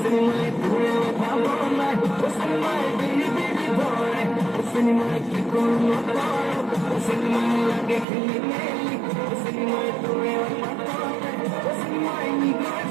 mai dure bhabona wasani mai bili bili bore wasani mai kikono taro wasani mai lage khili meli wasani mai dure matote wasani mai nigar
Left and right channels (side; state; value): left; drops out; at 8.1 s